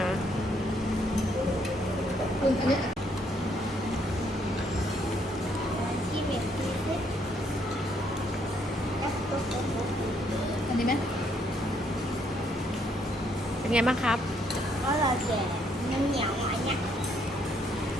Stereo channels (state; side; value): normal; both; correlation 0.70